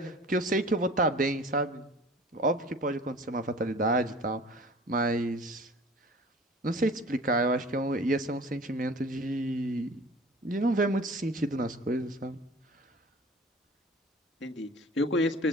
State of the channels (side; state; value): both; normal; correlation 0.44